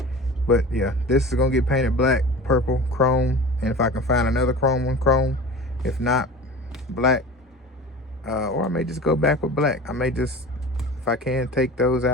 But yeah, this is gonna get painted black, purple, chrome. And if I can find another chrome one, chrome. If not, black. Or I may just go back with black. I may just, if I can, take those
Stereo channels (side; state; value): both; normal; correlation 0.36